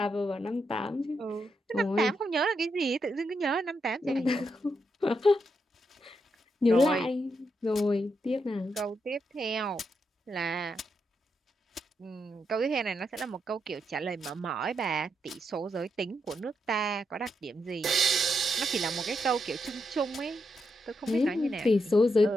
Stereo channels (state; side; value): normal; both; correlation 0.82